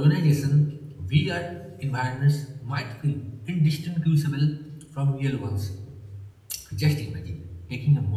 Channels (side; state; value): both; identical; correlation 1.00